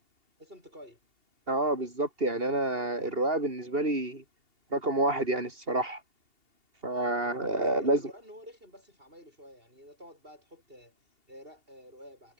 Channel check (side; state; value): left; late; 2.8 ms